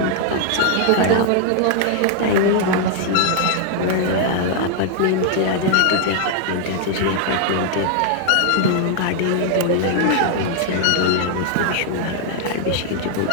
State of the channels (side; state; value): both; different; correlation 0.00